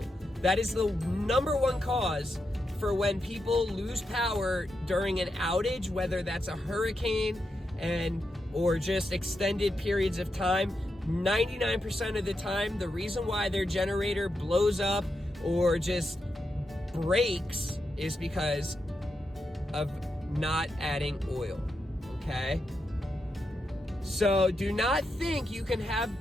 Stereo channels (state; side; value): normal; both; correlation 0.86